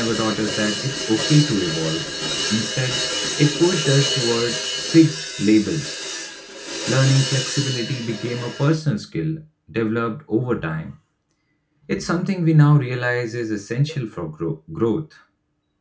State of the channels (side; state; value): both; identical; correlation 1.00